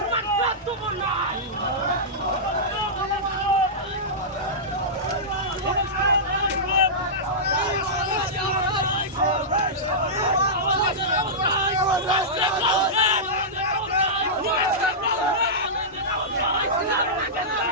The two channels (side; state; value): both; normal; correlation -0.14